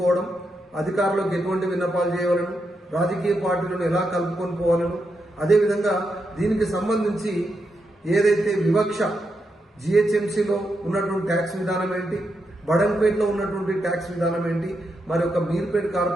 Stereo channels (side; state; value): both; normal; correlation 0.84